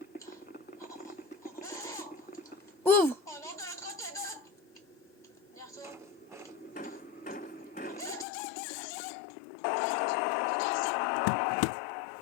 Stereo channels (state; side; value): drops out; right; at 8.2 s